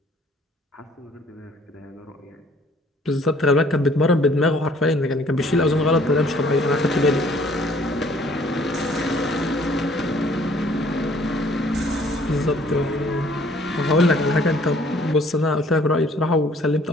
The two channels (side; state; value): both; normal; correlation 0.59